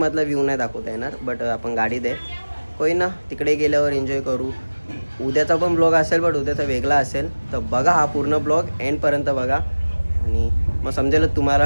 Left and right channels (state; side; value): inverted; both; correlation -1.00